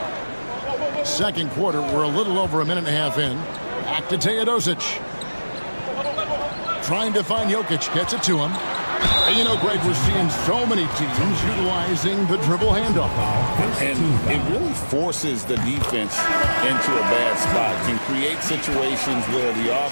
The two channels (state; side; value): inverted; both; correlation -1.00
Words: Second quarter, we're a little over a minute and a half in. Back to Teodosic. Trying to find Jokic, gets it to him. And you know, Greg, we're seeing so many teams utilizing the dribble handoff. And it really forces the defense into a bad spot. Can create situations where the